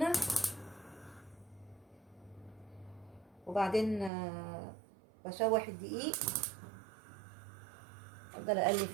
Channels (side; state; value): left; drops out; at 4.1 s